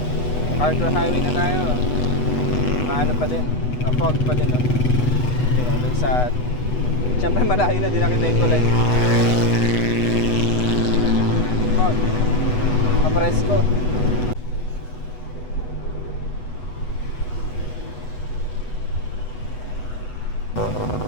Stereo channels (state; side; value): late; right; 8.1 ms